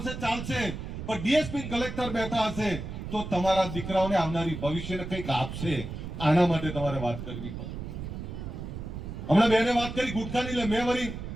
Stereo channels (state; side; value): noise; right; rumble, 7 dB below the sound